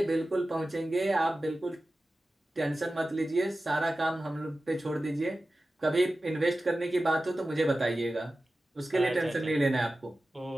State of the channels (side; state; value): both; normal; correlation 0.95